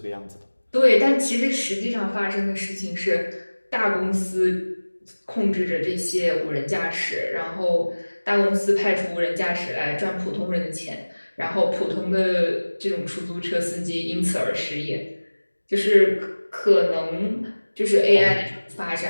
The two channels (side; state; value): both; inverted; correlation -1.00